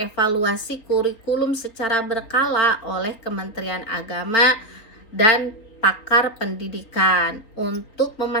kurikulum secara berkala oleh Kementerian Agama dan pakar pendidikan untuk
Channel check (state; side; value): late; right; 3.6 ms